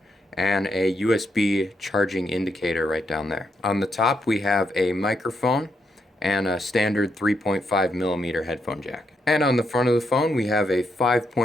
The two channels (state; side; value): normal; both; correlation 0.79